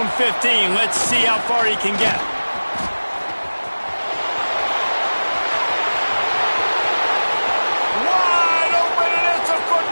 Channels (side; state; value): both; inverted; correlation -1.00